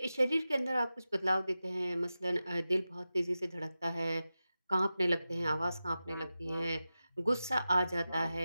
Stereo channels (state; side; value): inverted; both; correlation -0.93